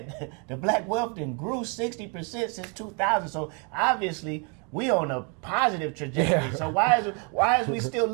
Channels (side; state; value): left; quieter; 35.5 dB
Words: the black wealth then grew 60% since 2000. So obviously we on a positive trajectory. Yeah. So why is we still